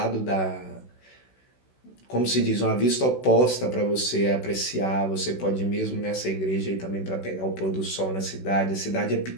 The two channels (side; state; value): right; late; 16 ms